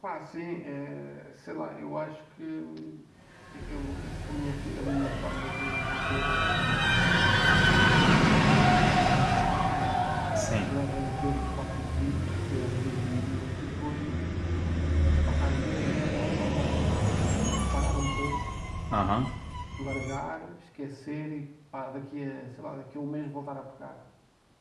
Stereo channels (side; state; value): both; identical; correlation 1.00